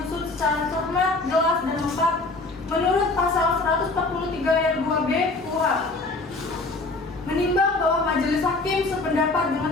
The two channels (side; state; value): right; quieter; 3.3 dB